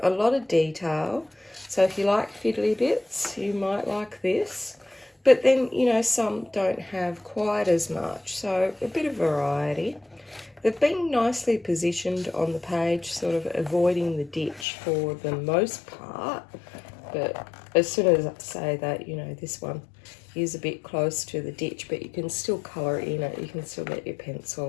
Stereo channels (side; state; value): right; drops out; at 14.7 s